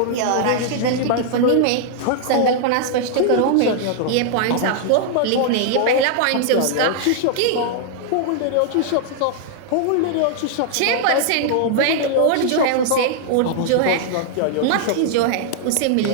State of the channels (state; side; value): different; both; correlation -0.01